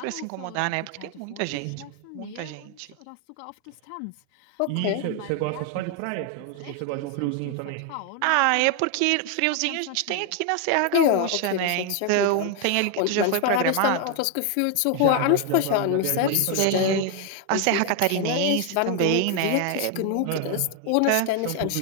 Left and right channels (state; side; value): different; both; correlation 0.01